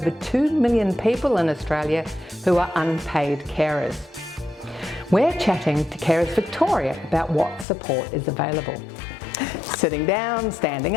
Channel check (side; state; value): right; drops out; at 7.7 s